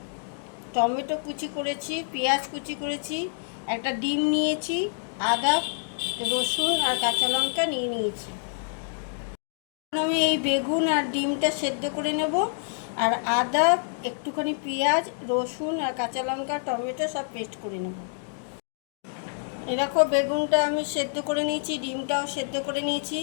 টমেটো কুচি করেছি, পেঁয়াজ কুচি করেছি, একটা ডিম নিয়েছি, আদা, রসুন আর কাঁচা লঙ্কা নিয়েছি। আমি এই বেগুন আর ডিমটা সেদ্ধ করে নেব, আর আদা, একটুখানি পেঁয়াজ, রসুন আর কাঁচা লঙ্কা, টমেটো সব পেস্ট করে নেব। এরকম বেগুনটা আমি সেদ্ধ করে নিয়েছি, ডিমটাও সেদ্ধ করে নিয়েছি,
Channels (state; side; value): silent; right; digital silence